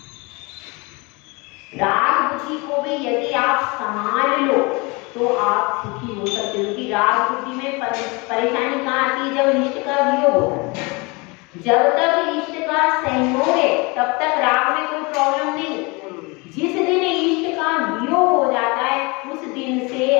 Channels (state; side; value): quieter; right; 27.3 dB